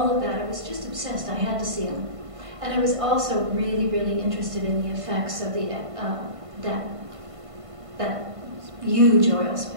of that. I was just obsessed. I had to see them. And I was also really, really interested in the effects of the that huge oil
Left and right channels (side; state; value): left; late; 1.5 ms